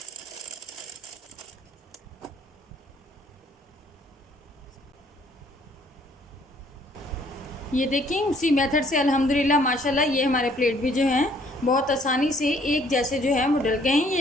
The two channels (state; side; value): normal; both; correlation 0.62